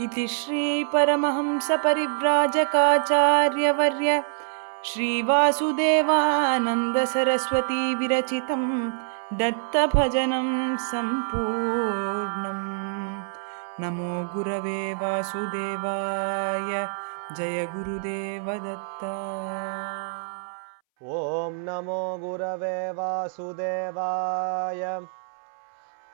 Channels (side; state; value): left; silent; 61 dB below the other